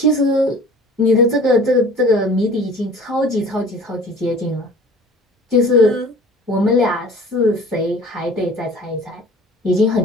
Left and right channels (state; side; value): normal; both; correlation 0.45